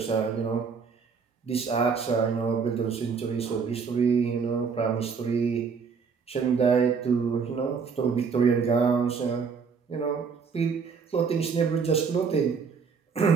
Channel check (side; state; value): left; quieter; 5.7 dB